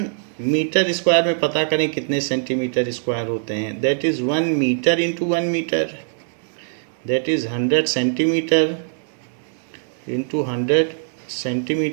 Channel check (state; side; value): silent; left; digital silence